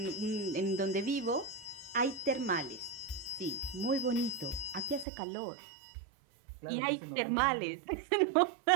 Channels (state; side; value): drops out; left; at 5.1 s